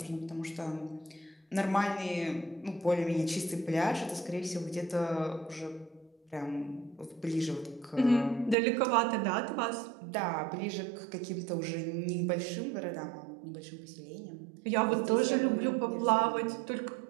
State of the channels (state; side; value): drops out; left; at 8.6 s